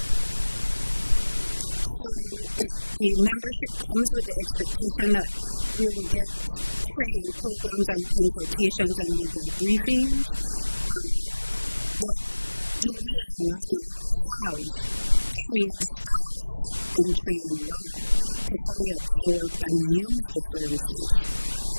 So the membership comes with the expectation that we will get training programs and consultations and legal briefings, but do we already have trained staff in trade law to fully absorb and use the services?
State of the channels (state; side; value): inverted; both; correlation -1.00